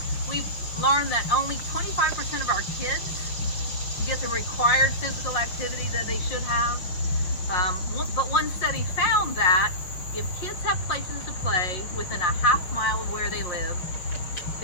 learned that only 25% of our kids get the required physical activity that they should have. But one study found that if kids have places to play within a half mile of where they live,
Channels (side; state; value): right; late; 5.8 ms